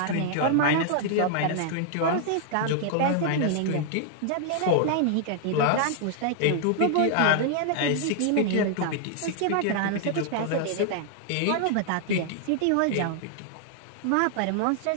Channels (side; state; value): both; different; correlation -0.01